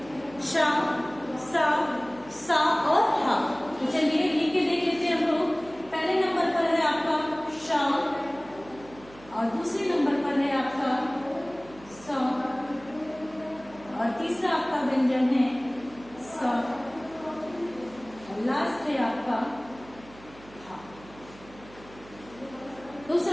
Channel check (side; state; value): right; noise; hum, 21 dB below the sound